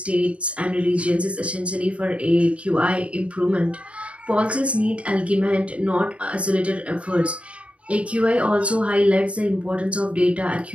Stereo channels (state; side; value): late; left; 0.063 ms